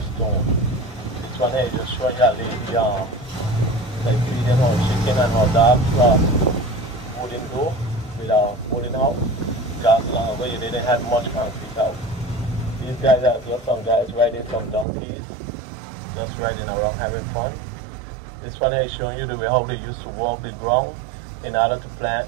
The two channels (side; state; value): left; drops out; at 14.9 s